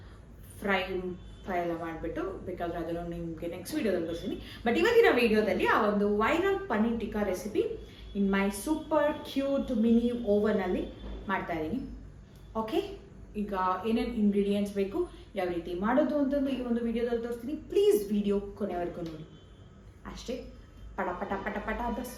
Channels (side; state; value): both; identical; correlation 1.00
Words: ಫ್ರೈ ಎಲ್ಲ ಮಾಡಿಬಿಟ್ಟು. ಬೇಕಾದರೆ ಅದನ್ನು ನಿಮಗೆ ನೆಕ್ಸ್ಟ್ ವೀಡಿಯೋದಲ್ಲಿ ಬರ್ತೀನಿ. ಬಟ್ ಇವತ್ತಿನ ವೀಡಿಯೋದಲ್ಲಿ ಆ ಒಂದು ವೈರಲ್ ಪನ್ನೀರ್ ಟಿಕ್ಕಾ ರೆಸಿಪಿ ಇನ್ ಮೈ ಸೂಪರ್ ಕ್ಯೂಟ್ ಮಿನಿ ಓವನಲ್ಲಿ ಮಾಡ್ತಾ ಇದ್ದೀನಿ. ಓಕೆ, ಈಗ ಏನೇನು ಇಂಗ್ರೀಡಿಯೆಂಟ್ಸ್ ಬೇಕು, ಯಾವ ರೀತಿ ಮಾಡೋದು ಅಂತಂದು ಈ ಒಂದು ವಿಡಿಯೋದಲ್ಲಿ ತೋರಿಸ್ತೀನಿ. ಪ್ಲೀಸ್ ವಿಡಿಯೋ ಕೊನೆವರೆಗೂ ನೋಡಿ. ಅಷ್ಟೇ, ಪಟ ಪಟ ಪಟ ಪಟ ಅಂತ